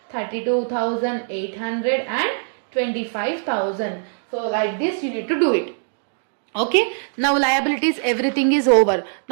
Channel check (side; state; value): left; silent; digital silence